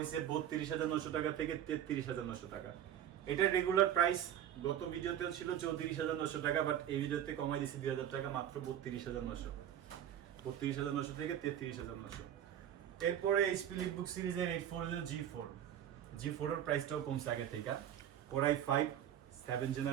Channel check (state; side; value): quieter; left; 10.6 dB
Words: 32,900 টাকা থেকে 33,900 টাকা। এটার রেগুলার প্রাইস গত ভিডিওতেও ছিল 34,900 টাকা, বাট এই ভিডিওতে কমাই দিয়েছি 2,000 টাকা, মাত্র 32,900। 32,900 থেকে 33,900। এরপরে HP লিটবুক সিরিজের 840 G4 এর প্রাইসটাও কমছে আগে থেকে। Core i5 7th